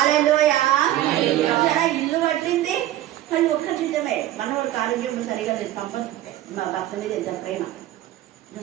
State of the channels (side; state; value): left; quieter; 13.8 dB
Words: ఇల్లు కట్టింది కానీ ఒక్క జీతమే. మనవాళ్ళకి ఆరోగ్యం సరిగా లేదు, మా భర్త మీద ఎంత ప్రేమ.